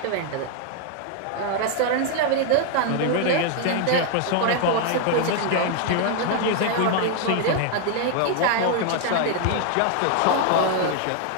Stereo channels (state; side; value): different; both; correlation 0.00